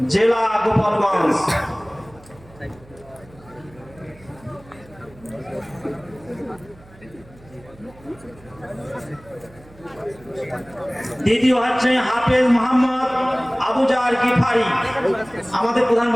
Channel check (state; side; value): noise; right; hum, 24 dB below the sound